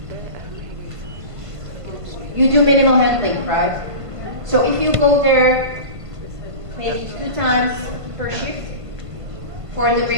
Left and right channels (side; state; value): left; late; 1.5 ms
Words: You do minimal handling, right? So if you go there maybe 2 times per shift for the